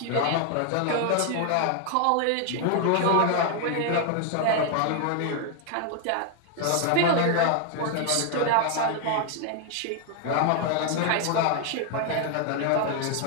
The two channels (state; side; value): different; both; correlation 0.00